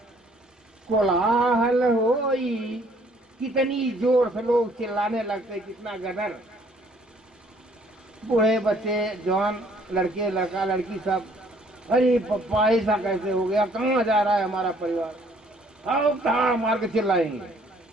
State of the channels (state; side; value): normal; both; correlation 0.61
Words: कोलाहल होई। कितनी जोर से लोग चिल्लाने लगते, कितना गदर। बूढ़े बच्चे, जवान, लड़के, लड़का, लड़की, सब, अरे पप्पा ऐसा कैसे हो गया, कहाँ जा रहा है हमारा परिवार, आओ कहाँ मार के चिल्लाएंगे।